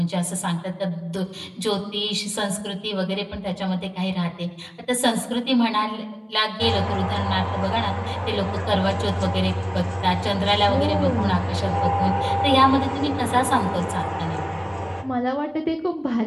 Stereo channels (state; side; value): identical; both; correlation 1.00